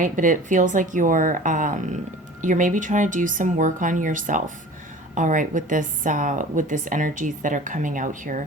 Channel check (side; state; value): both; normal; correlation 0.41